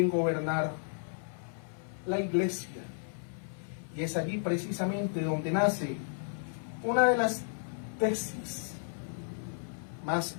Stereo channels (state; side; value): silent; right; 56 dB below the other